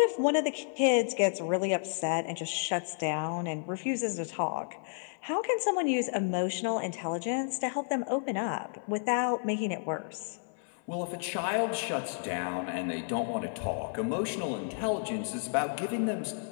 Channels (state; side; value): silent; right; 57 dB below the other